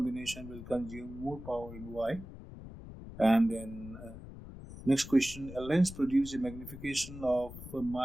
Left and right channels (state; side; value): noise; left; rumble, 13 dB below the sound